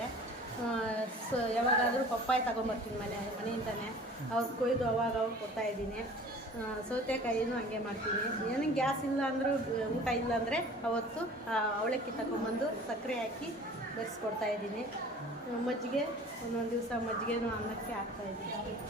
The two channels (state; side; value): normal; both; correlation 0.45